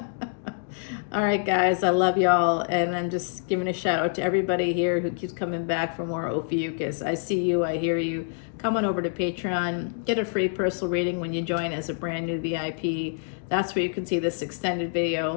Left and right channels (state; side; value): silent; right; digital silence